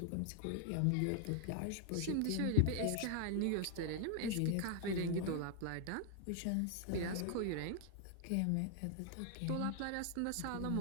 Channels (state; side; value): different; both; correlation 0.00